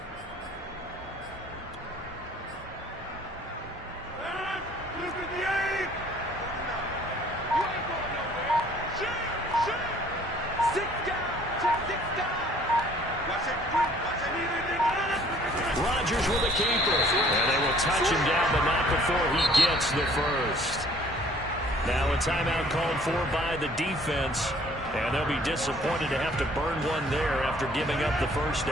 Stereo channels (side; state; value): both; normal; correlation 0.56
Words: Rodgers with a keeper. And they will touch him down, but not before he gets the first. Now a timeout called for by the defense. And they'll be disappointed to have to burn one there after giving up the first